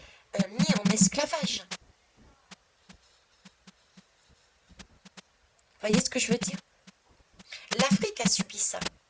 mis en esclavage. Voyez ce que je veux dire? L'Afrique a subi ça.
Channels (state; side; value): identical; both; correlation 1.00